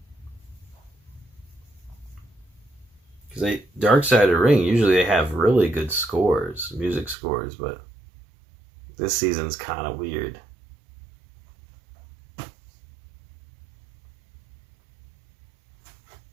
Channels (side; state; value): left; drops out; at 7.2 s